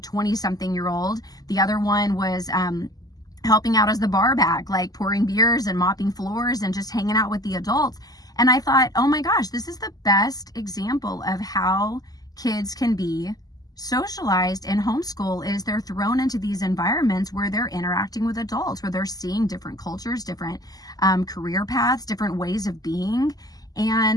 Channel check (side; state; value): right; late; 0.18 ms